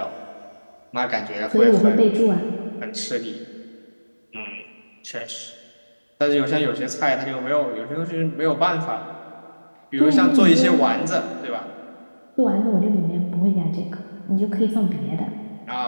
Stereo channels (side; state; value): both; inverted; correlation -1.00